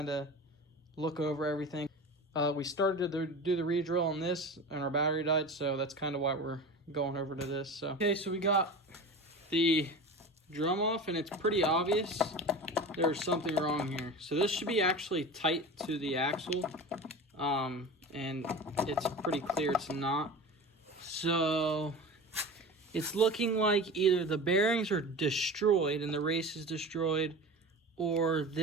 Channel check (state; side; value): normal; both; correlation 0.32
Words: of look over everything. We started to do the re-drill on this and our battery died, so that's kind of why we're going over to this. So okay, so we got the drum off, and it's pretty obvious there's something wrong here. So this should be actually tight to the axle, and it's pretty clear it's not. So it's looking like either the bearings are destroyed and the race is destroyed, or